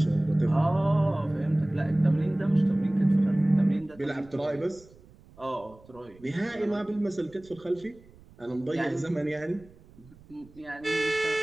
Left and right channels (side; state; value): right; noise; rumble, 25 dB below the sound